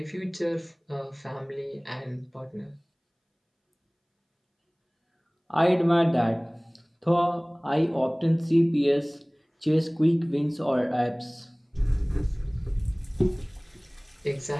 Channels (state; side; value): identical; both; correlation 1.00